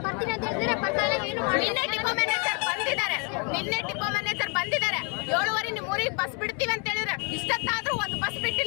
ನಿನ್ನೆ ಡಿಪೋ ಮ್ಯಾನೇಜರ್ ಬಂದಿದ್ದಾರೆ. 7:15 ನಿಮ್ಮೂರಿಗೆ ಬಸ್ ಬಿಡ್ತೀವಿ ಅಂತ ಹೇಳಿದ್ರೆ ಇಷ್ಟೊತ್ತಾದ್ರೂ ಒಂದು ಬಸ್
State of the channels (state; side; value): quieter; right; 35.6 dB